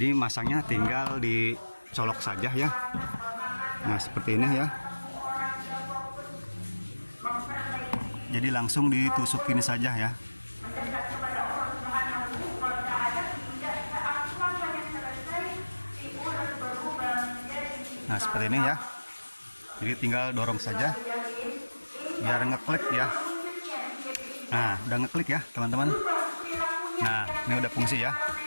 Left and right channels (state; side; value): inverted; both; correlation -1.00